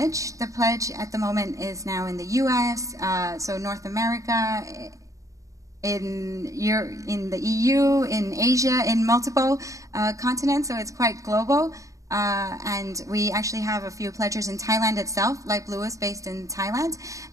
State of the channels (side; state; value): left; late; 0.16 ms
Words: The pledge at the moment is now in the U.S., so North America, in the EU, in Asia, in multiple continents, so it's quite global. And we actually have a few pledgers in Thailand itself. Light Blue is based in Thailand.